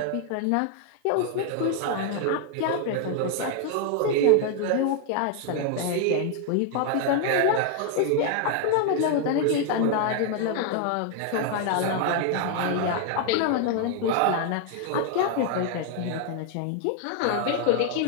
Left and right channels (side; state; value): both; different; correlation 0.00